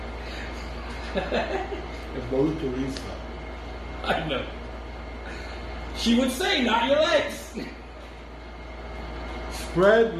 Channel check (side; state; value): both; identical; correlation 1.00